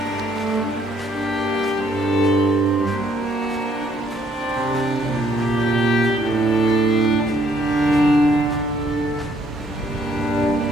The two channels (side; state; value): both; normal; correlation 0.67